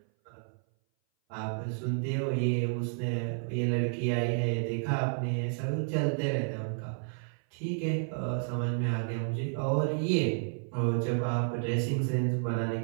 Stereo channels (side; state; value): left; silent; 57 dB below the other